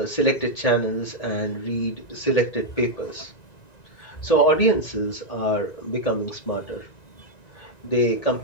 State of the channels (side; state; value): right; late; 1.9 ms